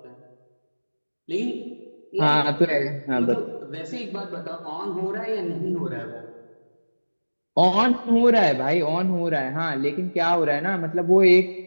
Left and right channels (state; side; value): inverted; both; correlation -1.00